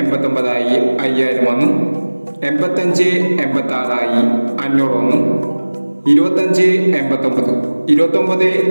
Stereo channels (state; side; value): inverted; both; correlation -1.00